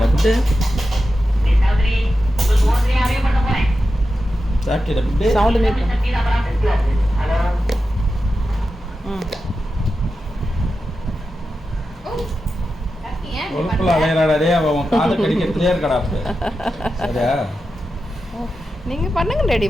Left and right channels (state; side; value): normal; both; correlation 0.91